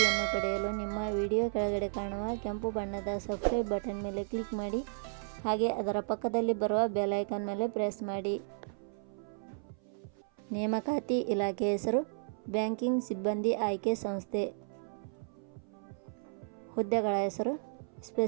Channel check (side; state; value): left; silent; 55 dB below the other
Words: ಪಡೆಯಲು ನಿಮ್ಮ ವಿಡಿಯೋ ಕೆಳಗಡೆ ಕಾಣುವ ಕೆಂಪು ಬಣ್ಣದ ಸಬ್ಸ್ಕ್ರೈಬ್ ಬಟನ್ ಮೇಲೆ ಕ್ಲಿಕ್ ಮಾಡಿ, ಹಾಗೆ ಅದರ ಪಕ್ಕದಲ್ಲಿ ಬರುವ ಬೆಲ್ ಐಕಾನ್ ಮೇಲೆ ಪ್ರೆಸ್ ಮಾಡಿ. ನೇಮಕಾತಿ ಇಲಾಖೆ ಹೆಸರು ಬ್ಯಾಂಕಿಂಗ್ ಸಿಬ್ಬಂದಿ ಆಯ್ಕೆ ಸಂಸ್ಥೆ. ಹುದ್ದೆಗಳ ಹೆಸರು